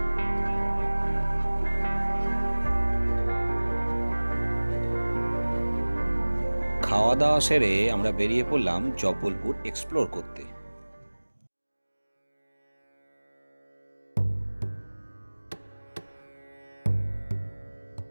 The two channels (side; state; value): both; inverted; correlation -1.00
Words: খাওয়া দাওয়া সেরে আমরা বেরিয়ে পড়লাম জব্বলপুর এক্সপ্লোর করতে।